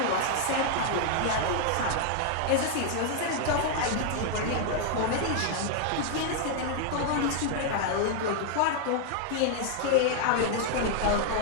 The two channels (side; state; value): both; different; correlation 0.00